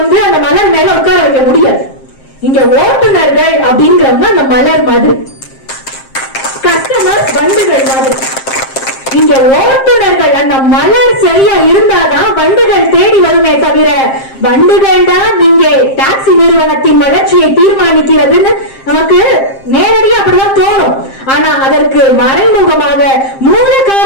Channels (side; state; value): right; late; 7.5 ms